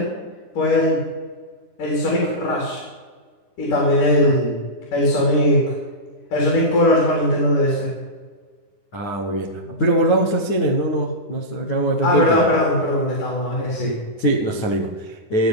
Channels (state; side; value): late; right; 9.9 ms